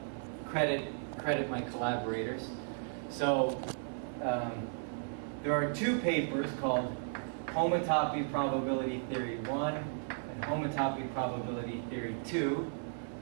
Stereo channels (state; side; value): silent; left; 54 dB below the other